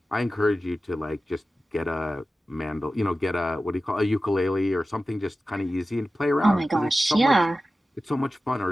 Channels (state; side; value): normal; both; correlation 0.94